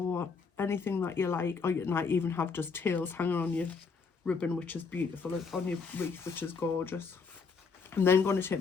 anything that you like, or you might even have just tails hanging on your ribbon, which is beautiful, on your wreath, which is gorgeous. I'm then going to take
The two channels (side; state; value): right; quieter; 5.1 dB